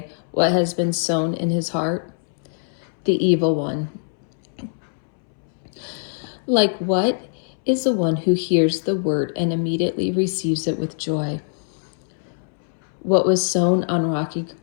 what has been sown in his heart? The evil one. Like what is the one who hears the word and immediately receives it with joy? What was sown on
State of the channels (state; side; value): silent; right; 64 dB below the other